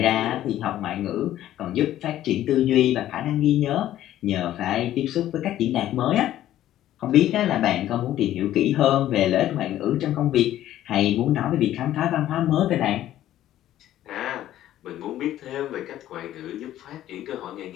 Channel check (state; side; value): quieter; right; 13.0 dB